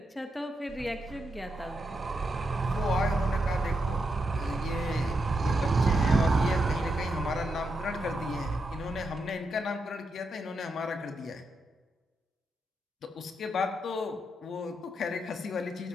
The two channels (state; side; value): normal; both; correlation 0.83